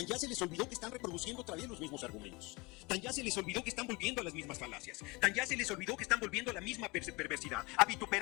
se les olvidó que están reproduciendo otra vez los mismos argumentos. Tan ya se les olvidó que están volviendo a las mismas falacias. Tan ya se les olvidó que están volviendo a la misma perversidad. A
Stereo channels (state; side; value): quieter; right; 25.6 dB